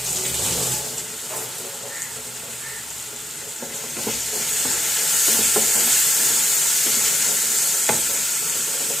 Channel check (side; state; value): both; normal; correlation 0.85